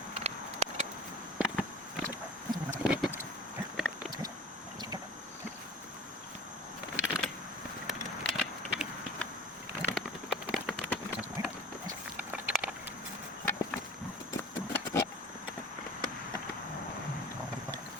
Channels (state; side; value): normal; both; correlation 0.41